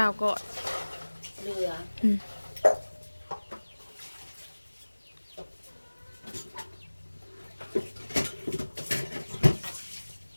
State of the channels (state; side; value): inverted; both; correlation -1.00